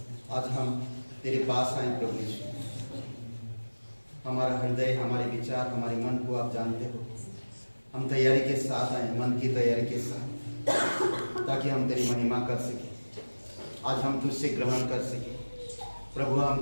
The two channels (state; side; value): inverted; both; correlation -1.00